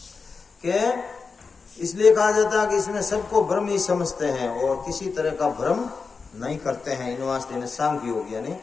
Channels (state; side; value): quieter; right; 4.8 dB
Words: के इसलिए कहा जाता है कि इसमें सबको ब्रह्म ही समझते हैं और किसी तरह का भ्रम नहीं करते हैं। इन वास्ते इन्हें सांख्य योग यानी